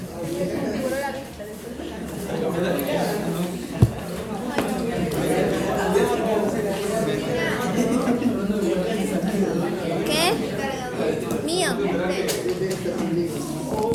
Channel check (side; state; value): both; identical; correlation 1.00